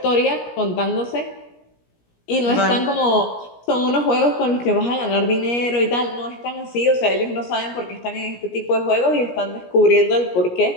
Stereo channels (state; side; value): late; right; 17 ms